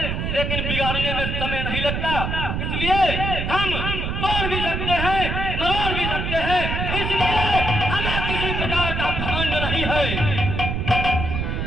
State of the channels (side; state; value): right; noise; rumble, 2 dB below the sound